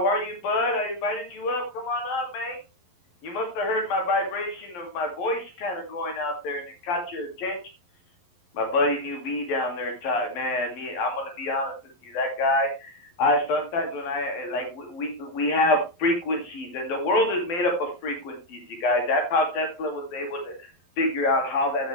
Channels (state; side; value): late; right; 11 ms